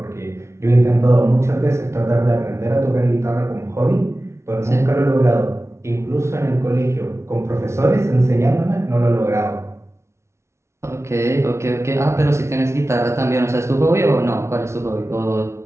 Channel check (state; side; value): late; left; 0.13 ms